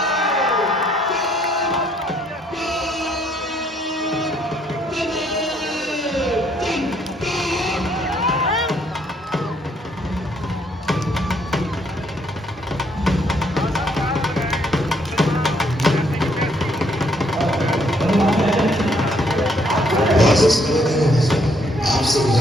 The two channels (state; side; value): normal; both; correlation 0.68